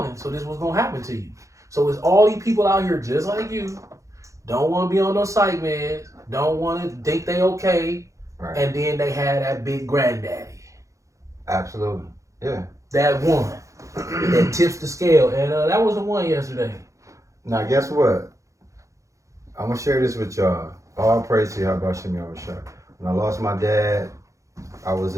so this is what's gonna happen to you. So it's all these people out here just like you, don't want to be on no psych meds, don't want to think they okay, and then they had that big granddaddy. Absolutely, yeah. That one that tips the scale, and that was the one yesterday. Now guess what? I'm gonna share this with y'all. All praise to Yahweh Shem Yahushua. When I lost my dad, I was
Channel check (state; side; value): late; left; 0.15 ms